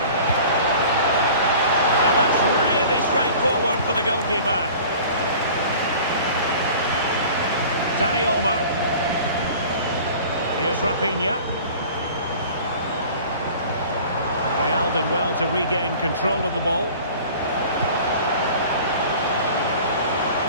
And that's really straightforward for the goalkeeper. Dani Olmo. Here's Rafinha. Real did well to regain control of the ball.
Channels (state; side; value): inverted; both; correlation -0.44